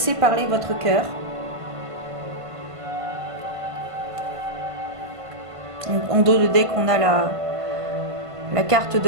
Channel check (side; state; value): left; late; 1.5 ms